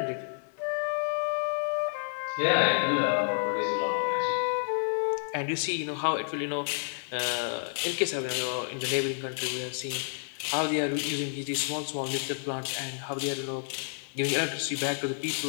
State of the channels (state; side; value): silent; right; 58 dB below the other